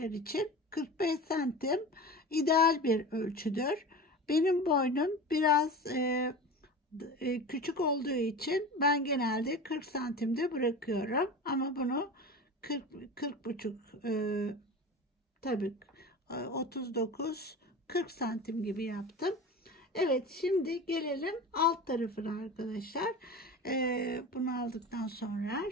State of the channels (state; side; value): normal; both; correlation 0.31